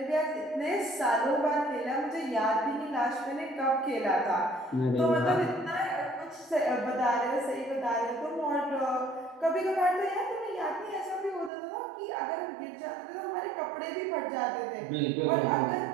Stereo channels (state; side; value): drops out; left; at 11.5 s